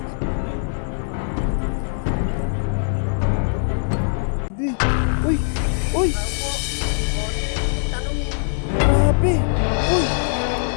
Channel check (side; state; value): right; silent; digital silence